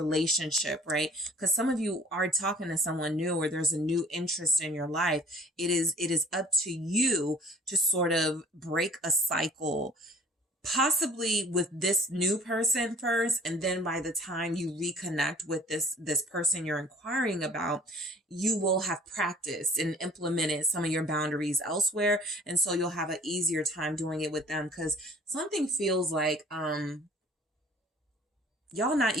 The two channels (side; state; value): both; normal; correlation 0.51